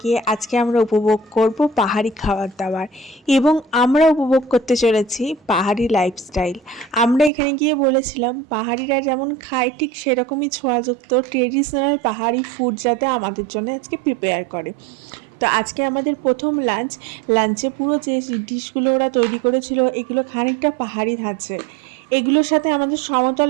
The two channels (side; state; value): left; drops out; at 7.3 s